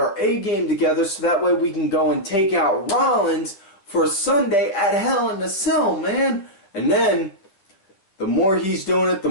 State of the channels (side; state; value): right; late; 10 ms